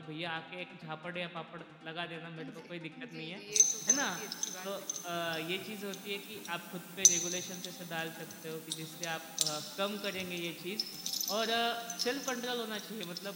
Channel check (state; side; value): identical; both; correlation 1.00